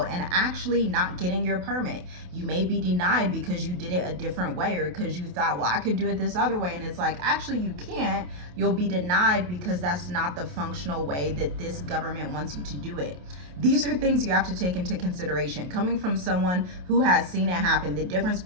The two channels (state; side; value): late; left; 28 ms